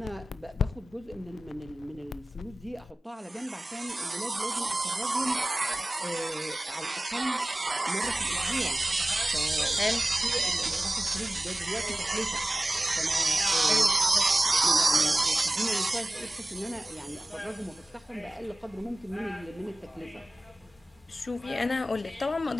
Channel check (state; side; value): normal; both; correlation 0.96